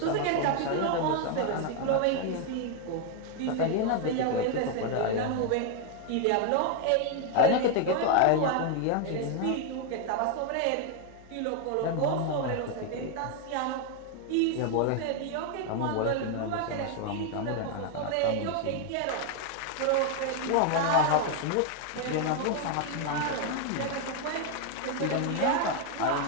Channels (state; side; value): different; both; correlation 0.00